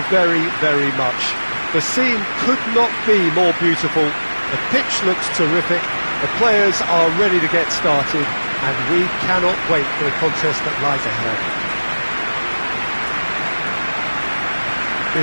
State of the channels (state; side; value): inverted; both; correlation -1.00